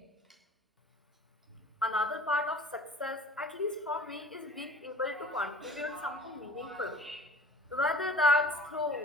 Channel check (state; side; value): normal; both; correlation 0.46